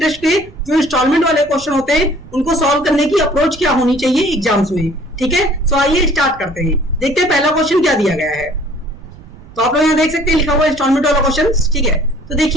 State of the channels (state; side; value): noise; right; rumble, 20 dB below the sound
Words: के जो इंस्टॉलमेंट वाले क्वेश्चन होते हैं उनको सॉल्व करने की अप्रोच क्या होनी चाहिए एग्जाम्स में, ठीक है। तो आइए स्टार्ट करते हैं, देखते हैं पहला क्वेश्चन क्या दिया गया है। तो आप लोग यहाँ देख सकते हैं लिखा हुआ इंस्टॉलमेंट वाला क्वेश्चन, ठीक है। तो